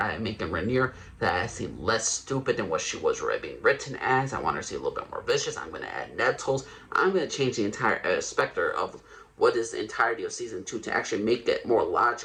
making Rhaenyra that seem less stupid than what she was being written as. I want her to see a little bit more vicious. I'm going to add nettles. I'm going to change the entire specter of what is the entirety of season 2 to actually make it more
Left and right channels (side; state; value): both; identical; correlation 1.00